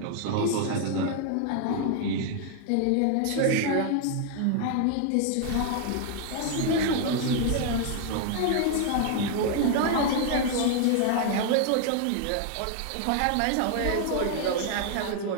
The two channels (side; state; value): both; different; correlation 0.00